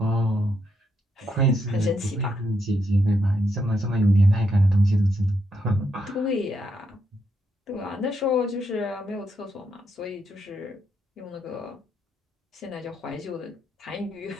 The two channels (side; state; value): both; normal; correlation 0.79